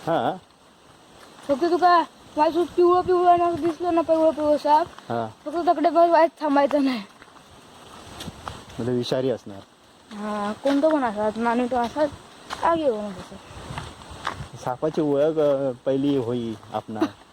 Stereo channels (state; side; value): identical; both; correlation 1.00